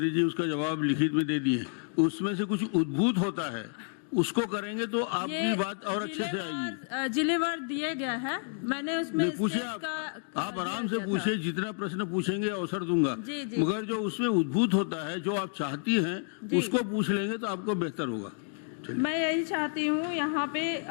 जी उसका जवाब लिखित में दे दिए। उसमें से कुछ उद्भूत होता है उसको करेंगे तो आपकी बात और अच्छे से आएगी। जिलेवार दिए गया है, मैंने उसमें पूछिए स्टेट आप आराम से पूछिए, जितना प्रश्न पूछेंगे अवसर दूंगा। जी, जी। मगर जो उसमें उद्भूत होता है, जो आप चाहती हैं उसको पूछ लेंगे तो आपको बेहतर होगा। मैं यही चाहती हूँ, यहाँ पे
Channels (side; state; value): right; silent; 58 dB below the other